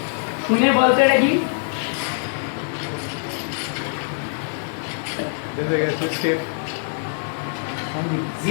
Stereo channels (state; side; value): silent; right; digital silence